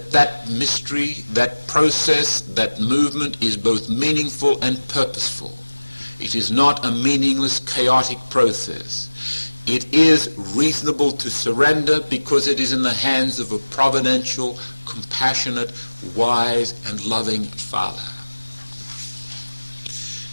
that mystery, that process, that movement is both meaningful and purposeful. It is not a meaningless, chaotic process. It is reasonable to surrender because it is in the hands of a providential, compassionate, wise, and loving Father.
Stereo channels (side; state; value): both; inverted; correlation -1.00